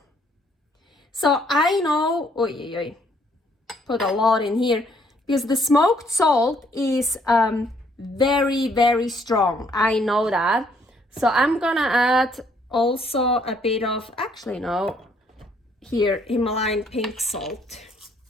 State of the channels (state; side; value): normal; both; correlation 0.67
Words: So I know, put a lot in here because the smoked salt is very, very strong. I know that. So I'm gonna add also a bit of, actually no, here, Himalayan pink salt.